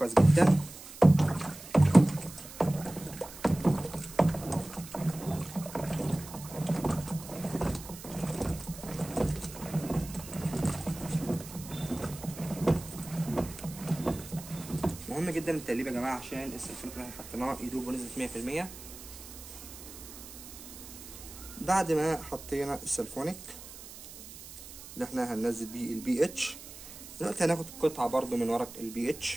جدا. مهم جدا التقليب يا جماعه عشان السلفونيك اللي احنا حطيناه يدوب بنسبه 100%. بعد ما حطينا السلفونيك اللي احنا هننزل بيه البي اتش، دلوقتي هناخد قطعه برضو من ورق البي اتش،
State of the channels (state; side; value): noise; right; hiss, 15 dB below the sound